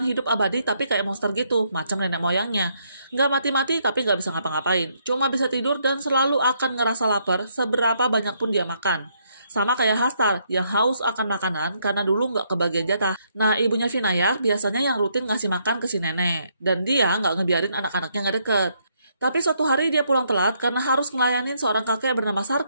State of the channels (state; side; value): inverted; both; correlation -0.73